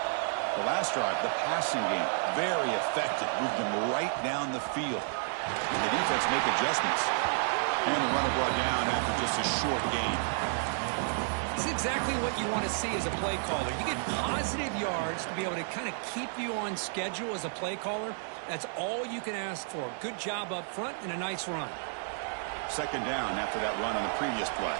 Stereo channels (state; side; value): silent; left; 57 dB below the other